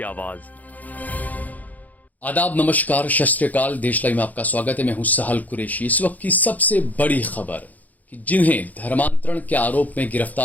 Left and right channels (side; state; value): right; late; 0.080 ms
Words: आवाज। आदाब, नमस्कार, सत श्री अकाल। देश लाइव में आपका स्वागत है। मैं हूं सहल कुरैशी। इस वक्त की सबसे बड़ी खबर कि जिन्हें धर्मांतरण के आरोप में